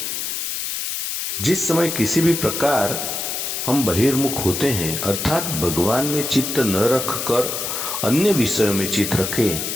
जिस समय किसी भी प्रकार हम बहिर्मुख होते हैं, अर्थात भगवान में चित्त न रखकर अन्य विषयों में चित्त रखें,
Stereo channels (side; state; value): left; noise; hiss, 3 dB below the sound